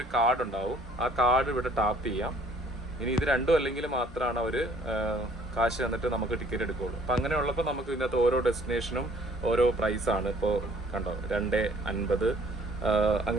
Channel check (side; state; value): both; normal; correlation 0.58